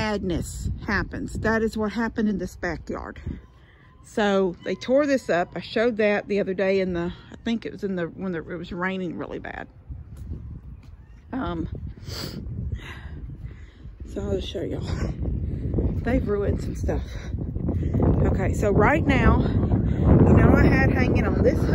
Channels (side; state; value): both; identical; correlation 1.00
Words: happens. That is what happened in this backyard. So they tore this up. I showed that the other day in the, I think it was in the, when it was raining really bad. So I'll just show y'all. They've ruined some stuff. Okay, so right now, you know, I had hanging on this